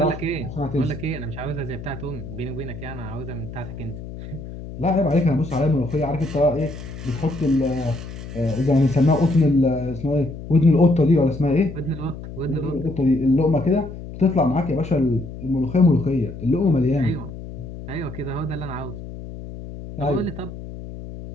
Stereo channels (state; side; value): noise; left; hum, 11 dB below the sound